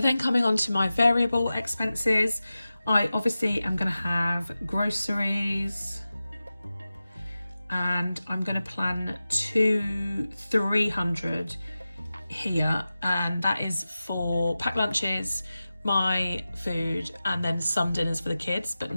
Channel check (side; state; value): both; inverted; correlation -0.95